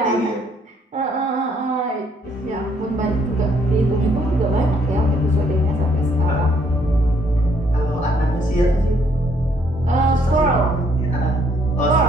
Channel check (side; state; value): both; normal; correlation 0.67